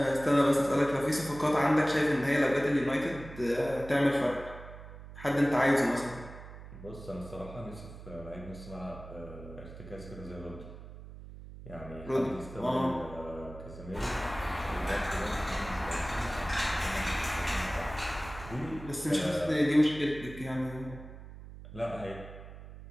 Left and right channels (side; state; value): right; noise; hum, 14 dB below the sound